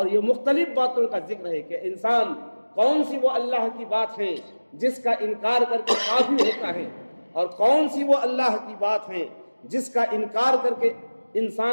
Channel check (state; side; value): inverted; both; correlation -1.00